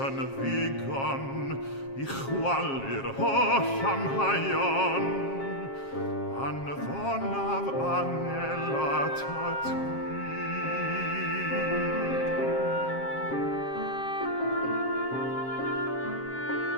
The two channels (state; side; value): late; right; 7.4 ms